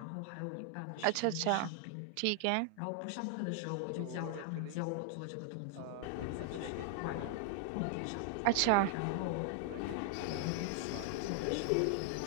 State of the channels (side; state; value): both; different; correlation 0.00